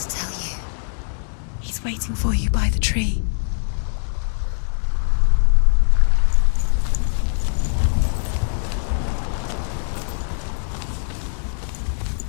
tell you? He's waiting for you by the tree.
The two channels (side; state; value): right; silent; digital silence